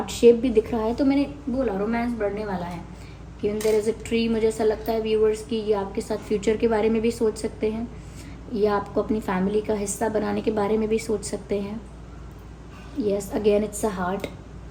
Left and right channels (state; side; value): identical; both; correlation 1.00